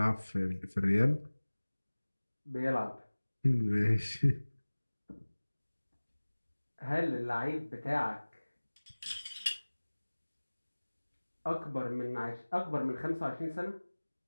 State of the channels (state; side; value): inverted; both; correlation -1.00